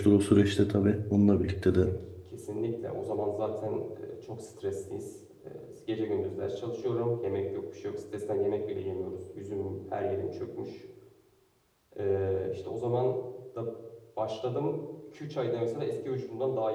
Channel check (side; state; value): both; identical; correlation 1.00